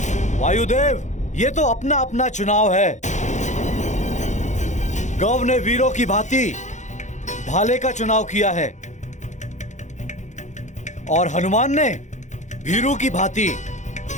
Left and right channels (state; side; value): late; right; 0.35 ms